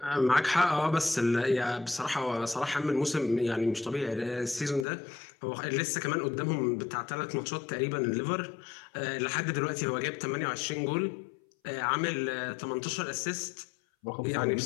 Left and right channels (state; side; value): drops out; right; at 4.9 s